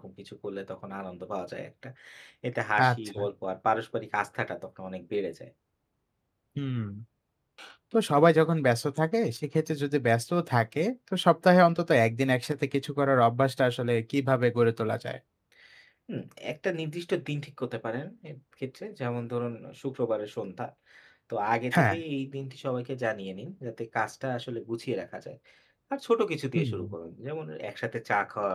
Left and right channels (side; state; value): both; identical; correlation 1.00